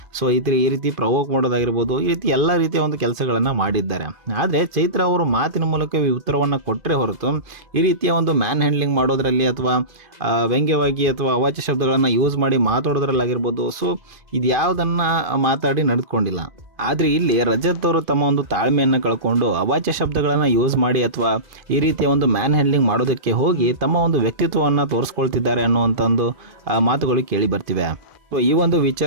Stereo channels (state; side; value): late; left; 2.5 ms